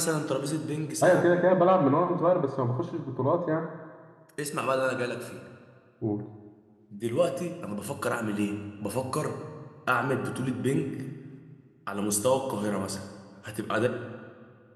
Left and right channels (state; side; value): identical; both; correlation 1.00